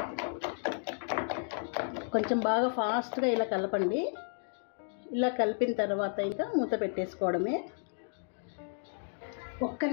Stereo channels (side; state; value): right; silent; digital silence